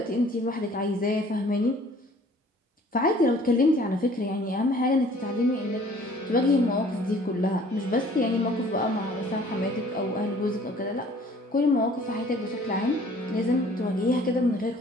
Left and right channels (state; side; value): normal; both; correlation 0.54